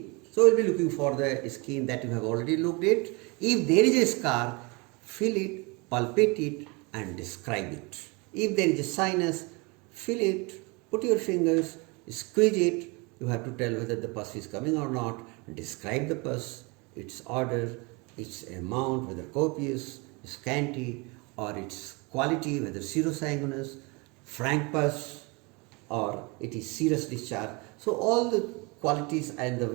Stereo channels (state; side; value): quieter; left; 28.4 dB